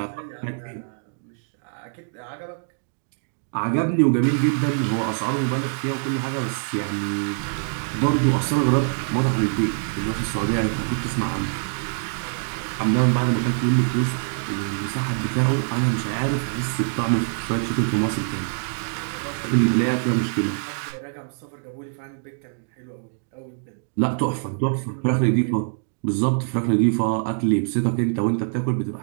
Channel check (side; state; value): left; silent; digital silence